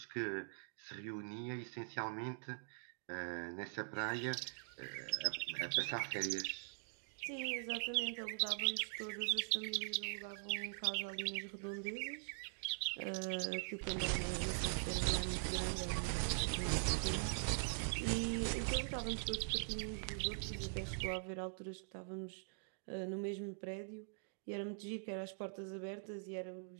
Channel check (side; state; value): left; silent; digital silence